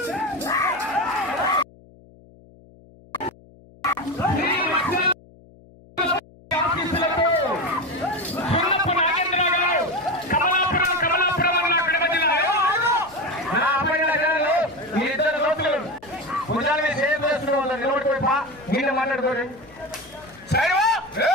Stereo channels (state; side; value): noise; left; hum, 25 dB below the sound